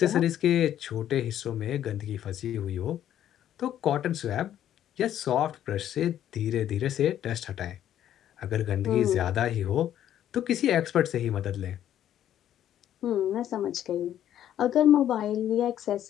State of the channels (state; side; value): quieter; right; 11.1 dB